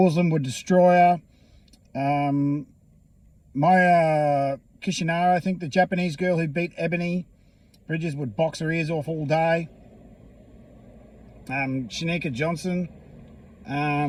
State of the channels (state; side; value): identical; both; correlation 1.00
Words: would destroy her. Maya Kishinara, I think the Japanese girl who beat Ebony Bridges, would box her ears off all day. Shanika Johnson